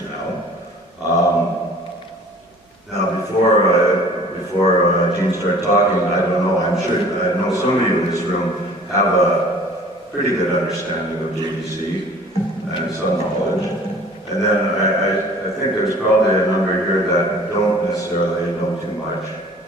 now. Now, before Jean started talking, I don't know, I'm sure, I know some of you in this room have a pretty good understanding of JDC and some knowledge. And then I think there's probably a number here that don't necessarily know too much,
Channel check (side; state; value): both; normal; correlation 0.49